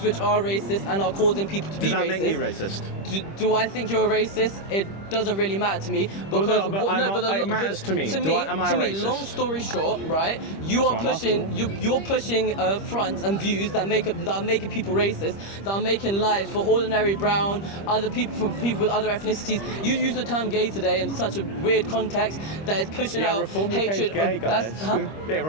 which are racist and are causing people to be racist. Does that make me racist? Do I think you're a racist? It doesn't really matter to me because it matters to me. Am I a racist? Long story short, right? You're pushing fronts and views that are making people racist, that are making lives for ordinary brown, other people, for people with other ethnicities. You use the term gay today in such a weird context that is pushing out Reform hatred. UK is gay, guys. Yeah,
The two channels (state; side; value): late; right; 25 ms